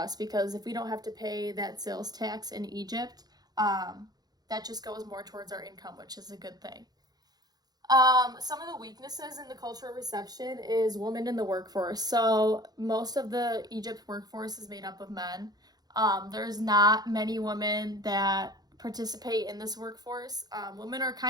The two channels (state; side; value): late; left; 0.19 ms